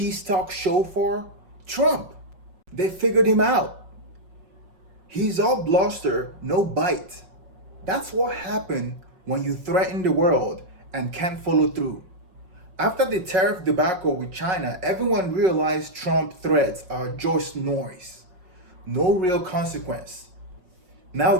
talk show for? Trump. They figured him out. He's all bluster, no bite. That's what happened when you threaten the world and can't follow through. After the tariff debacle with China, everyone realized Trump threats are just noise, no real consequence. Now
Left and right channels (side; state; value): left; late; 5.4 ms